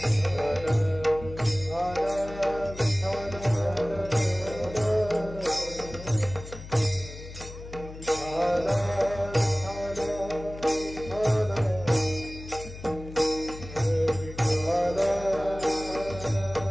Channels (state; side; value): noise; left; hum, 13 dB below the sound